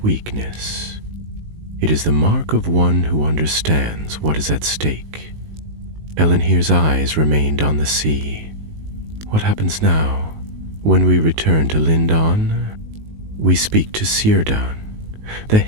weakness. It is the mark of one who understands what is at stake." Elenhir's eyes remained on the sea. "What happens now? When we return to Lindon, we speak to Círdan. The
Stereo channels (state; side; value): late; left; 19 ms